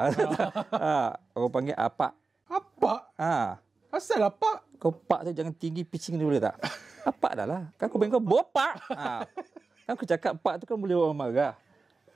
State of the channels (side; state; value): left; quieter; 4.1 dB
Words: Orang panggil Apak. Asal Apak? Kau pak tu jangan tinggi pitching dia boleh tak? Apak dah lah. Kan aku panggil kau Bopak. Kan aku cakap pak tu kan boleh orang marah.